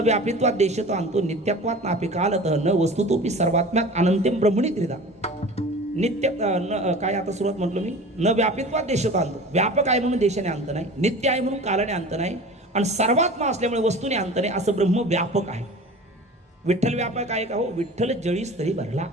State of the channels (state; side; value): normal; both; correlation 0.38